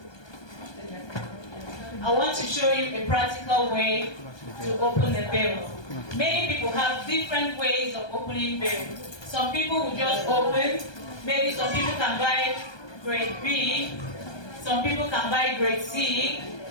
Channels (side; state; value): right; late; 1.2 ms